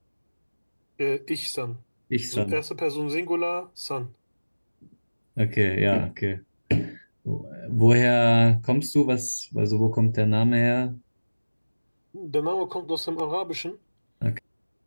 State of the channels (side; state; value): both; inverted; correlation -1.00